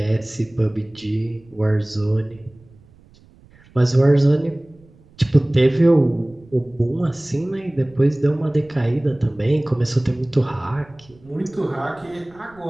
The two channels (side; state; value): right; noise; rumble, 27 dB below the sound